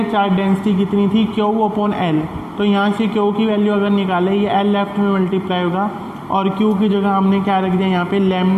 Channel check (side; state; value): both; identical; correlation 1.00